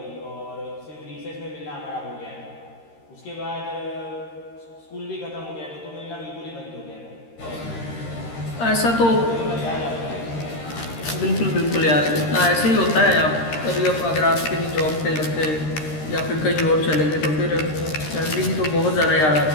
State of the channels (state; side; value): late; right; 13 ms